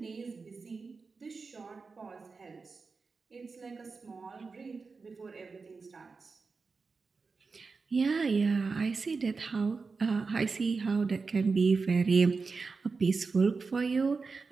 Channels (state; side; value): quieter; left; 4.5 dB